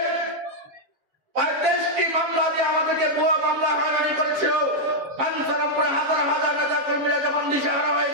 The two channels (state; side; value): late; left; 7.1 ms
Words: 35টি মামলা দিয়ে আমাদেরকে ভুয়া মামলা হয়রানি করেছিল, বাঞ্ছারামপুরে হাজার হাজার নেতা কর্মীরা যখন দিশাহারা